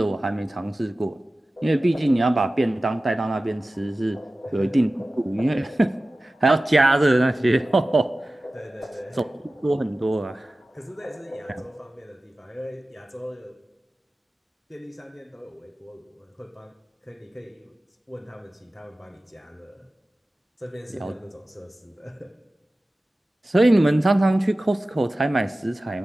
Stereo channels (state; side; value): normal; both; correlation 0.96